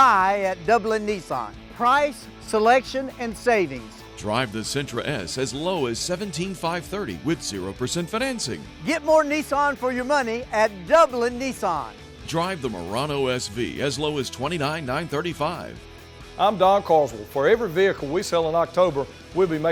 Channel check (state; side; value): identical; both; correlation 1.00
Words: at Dublin Nissan. Price, selection, and savings. Drive the Sentra S as low as $17,530 with 0% financing. Get more Nissan for your money at Dublin Nissan. Drive the Murano SV as low as $29,935. I'm Don Carswell. For every vehicle we sell in October, we'll be